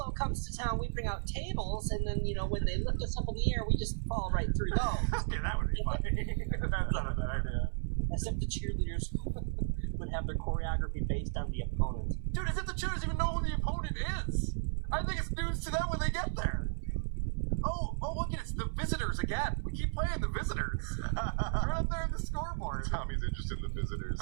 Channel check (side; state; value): left; silent; 55 dB below the other